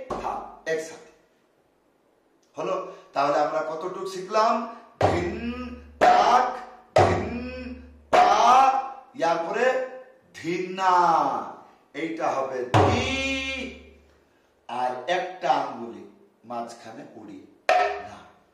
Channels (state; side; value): identical; both; correlation 1.00